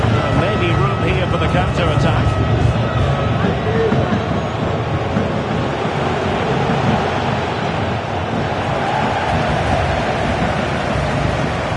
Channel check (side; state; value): both; identical; correlation 1.00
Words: Maybe room here for the counter-attack.